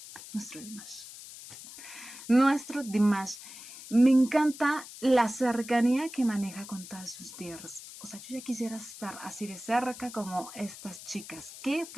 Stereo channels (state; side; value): noise; left; hiss, 14 dB below the sound